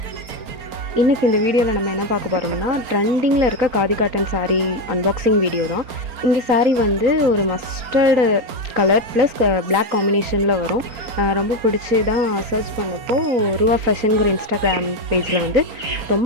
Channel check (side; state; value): left; late; 4.3 ms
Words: இன்றைக்கி இந்த வீடியோவில் நம்ம என்ன பார்க்க போகிறோம்னா ட்ரெண்டிங்கில் இருக்க khadi cotton sari unboxing video தான். இந்த சாரீ வந்து ஒரு மஸ்டர்டு கலர் ப்ளஸ் பிளாக் காம்பினேஷனில் வரும். ரொம்ப பிடிச்சி தான் சர்ச் பண்ணப்போ ரூவா ஃபேஷனுங்கிற இன்ஸ்டாகிராம் பேஜில் வந்து